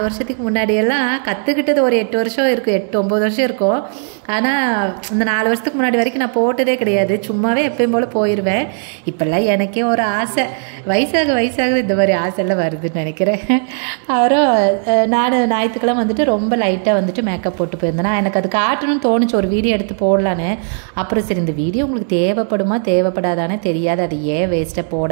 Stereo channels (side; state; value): left; silent; 60 dB below the other